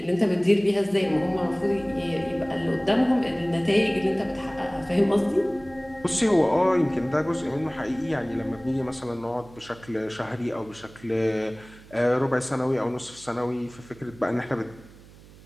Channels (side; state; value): right; noise; hum, 22 dB below the sound